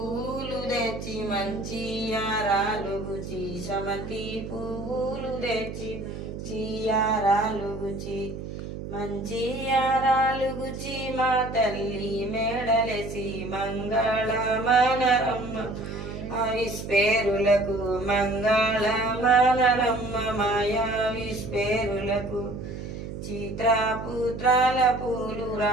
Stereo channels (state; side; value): noise; right; hum, 8 dB below the sound